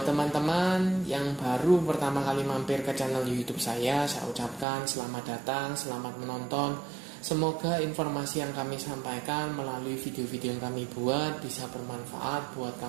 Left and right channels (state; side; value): drops out; left; at 4.7 s